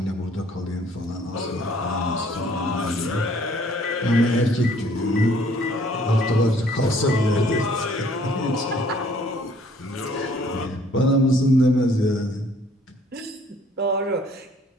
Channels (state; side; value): normal; both; correlation 0.60